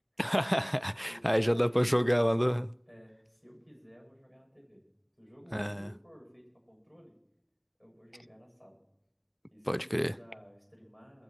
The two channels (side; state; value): both; identical; correlation 1.00